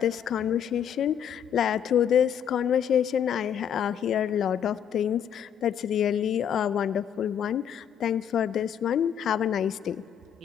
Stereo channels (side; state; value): right; quieter; 8.8 dB